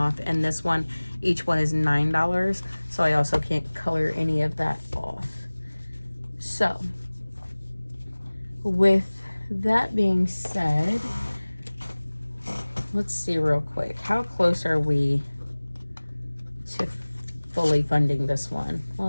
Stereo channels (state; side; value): inverted; both; correlation -1.00